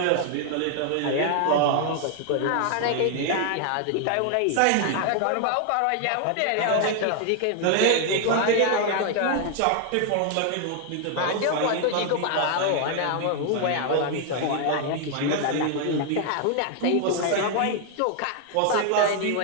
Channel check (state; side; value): different; both; correlation 0.00